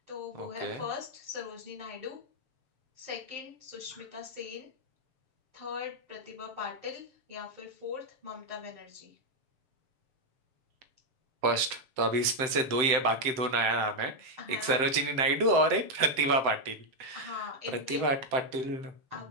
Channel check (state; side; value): late; left; 7.7 ms